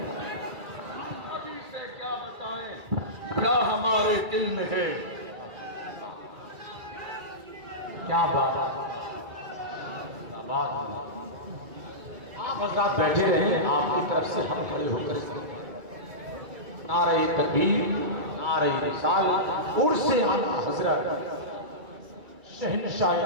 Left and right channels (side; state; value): left; late; 2.3 ms